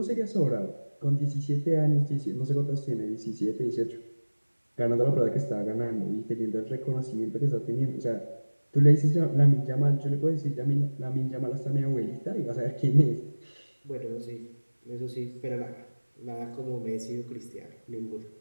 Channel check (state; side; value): inverted; both; correlation -1.00